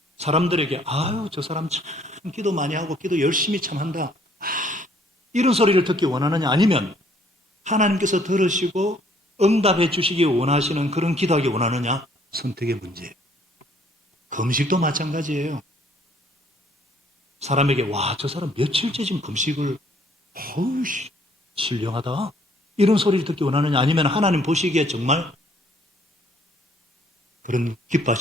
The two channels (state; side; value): normal; both; correlation 0.62